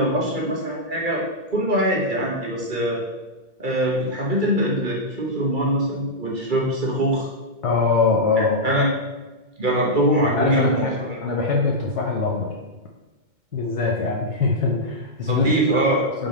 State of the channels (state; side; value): late; left; 2.2 ms